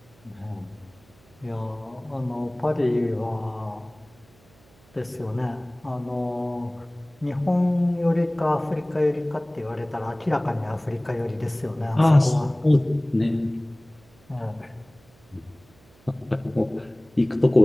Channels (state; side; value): noise; right; hum, 29 dB below the sound